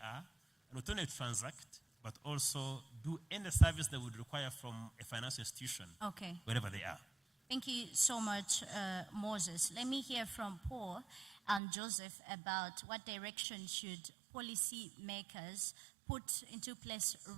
are, and not only transact, but also do any service they would require from a financial institution, Okay. wherever they are. Thank you so much, Moses. Let me hear from Paul and Joseph about what direction should policy makers put into place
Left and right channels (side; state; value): left; drops out; at 11.6 s